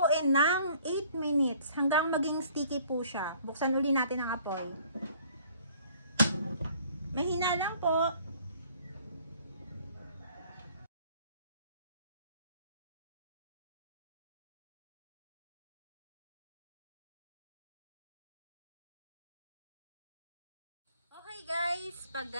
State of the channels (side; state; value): both; inverted; correlation -0.56